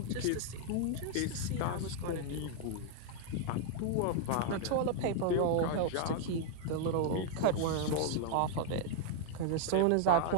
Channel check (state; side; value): different; both; correlation -0.01